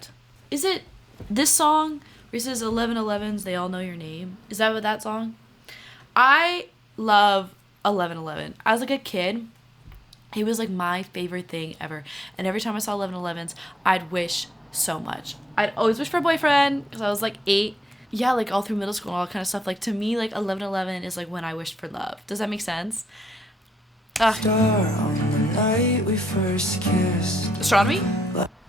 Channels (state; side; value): normal; both; correlation 0.84